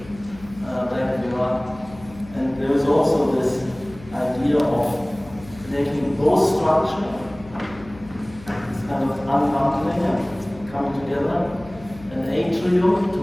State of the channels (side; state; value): left; noise; hum, 19 dB below the sound